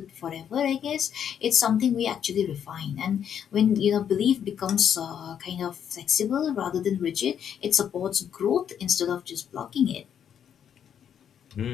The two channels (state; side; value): quieter; right; 8.7 dB